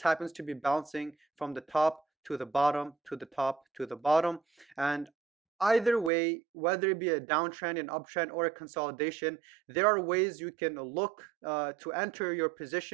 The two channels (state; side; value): drops out; left; at 6.1 s